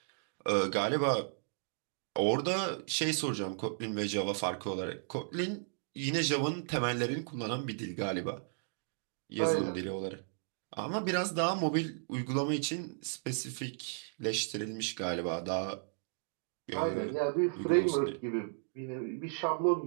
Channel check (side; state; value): left; silent; digital silence